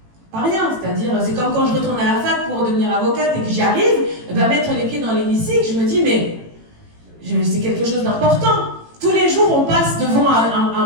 Pas rien. C'est-à-dire, c'est comme quand je retourne à la fac pour devenir avocate et que j'y arrive, mettre les pieds dans l'hémicycle, je me dis, mais c'est quelque chose d'important. Tous les jours, on passe devant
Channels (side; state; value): left; late; 18 ms